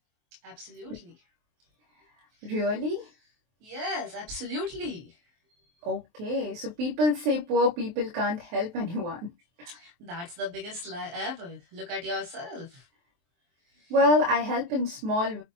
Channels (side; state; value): left; late; 23 ms